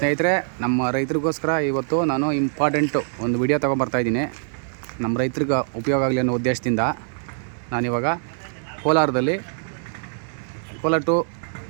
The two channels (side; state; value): left; silent; digital silence